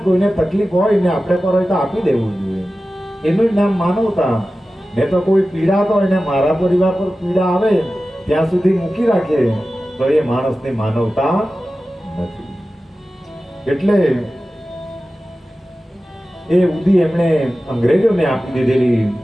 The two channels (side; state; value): both; normal; correlation 0.95